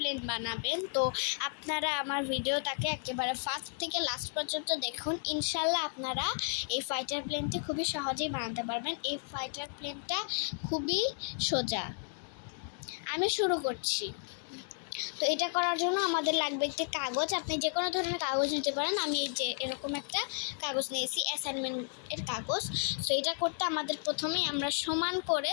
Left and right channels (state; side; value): silent; right; 56 dB below the other